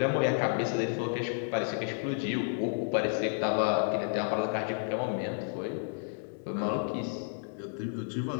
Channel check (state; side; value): silent; right; digital silence